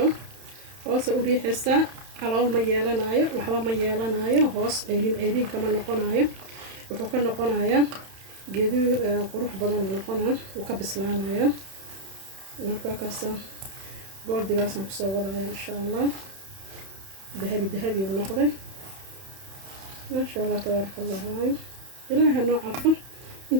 hoosa u riixaysaa calool ma yeelanayo waxba ma yeelanayo hoos ceerin kama noqonayo wuxuu ka noqonayaa geedu qurux badan noqonaa uu ka bislaanaya marka kaasa goldigaasaan kusoo wadaya insha allah dahabi dahabi uu noqday maasha allah tabaaraka allah waayo ilaaha noo calfo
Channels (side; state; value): left; late; 31 ms